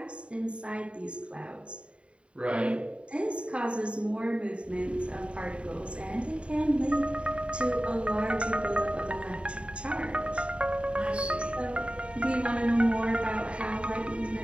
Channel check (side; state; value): left; late; 0.059 ms